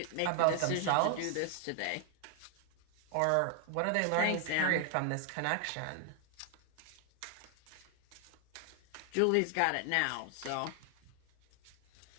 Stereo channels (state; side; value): different; both; correlation 0.00